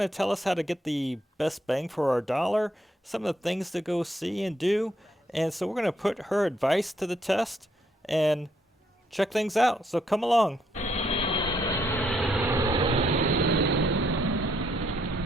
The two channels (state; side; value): normal; both; correlation 0.73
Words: tell us how to get the best bang for our dollar, some of the things to go see and do. And so we're going to put her advice to the test and check things out. So come along.